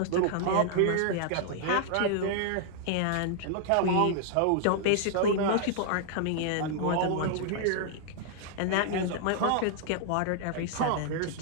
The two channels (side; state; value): both; different; correlation -0.01